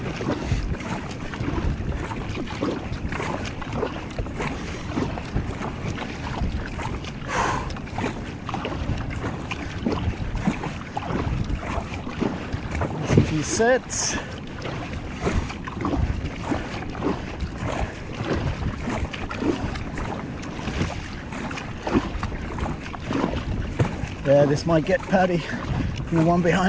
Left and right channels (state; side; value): identical; both; correlation 1.00